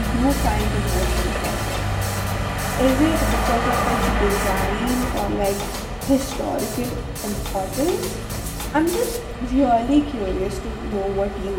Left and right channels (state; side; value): identical; both; correlation 1.00